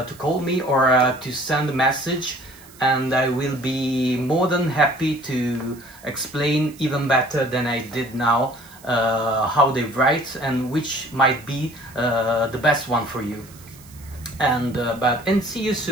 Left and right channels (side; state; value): right; noise; hiss, 23 dB below the sound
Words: call me or to send a message, and I will be more than happy to explain even better than I did now how they write and which might be the best one for you. And see you